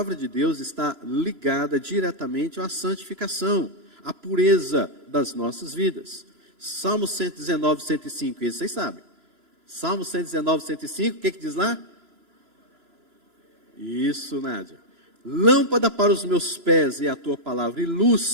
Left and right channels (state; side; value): late; left; 3.0 ms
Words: de Deus está ligada diretamente à santificação, à pureza das nossas vidas. Salmo 119, 105, esse vocês sabem. Salmo 119, 105, o que diz lá? Isso, Nádia. Lâmpada para os meus pés é a tua palavra e